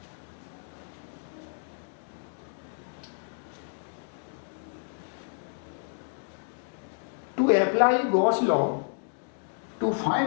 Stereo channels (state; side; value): silent; right; 58 dB below the other